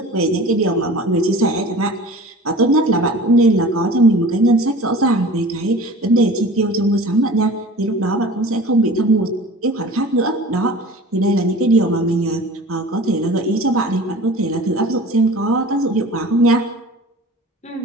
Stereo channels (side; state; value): both; normal; correlation 0.40